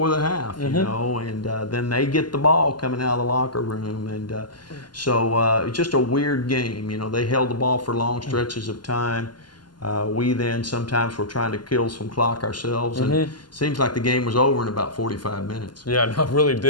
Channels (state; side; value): late; right; 0.71 ms